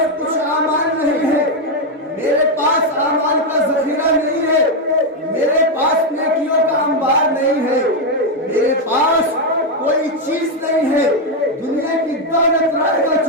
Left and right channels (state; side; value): normal; both; correlation 0.03